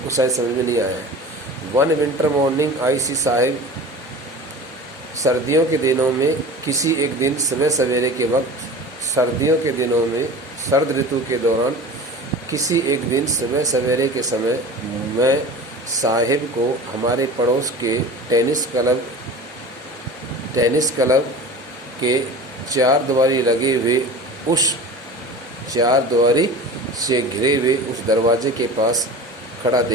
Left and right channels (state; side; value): normal; both; correlation 0.36